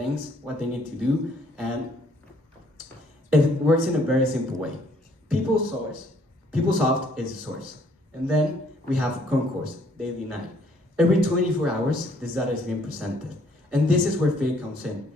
what they need to do, and it works in a very simple way. PeopleSoft is a source, and then we have Concourse, daily 9. Every 24 hours, this data is being presented, and this is where Fit comes in.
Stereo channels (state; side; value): normal; both; correlation 0.64